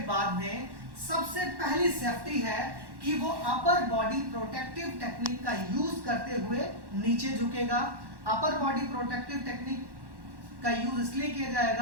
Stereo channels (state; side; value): late; left; 1.1 ms